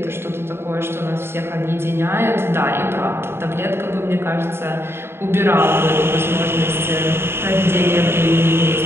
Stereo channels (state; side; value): late; left; 0.12 ms